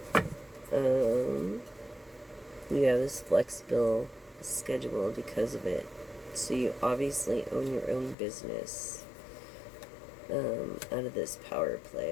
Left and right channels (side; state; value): right; drops out; at 8.2 s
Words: You have this flexible schedule because of it. So you obviously own your own business. Out of this power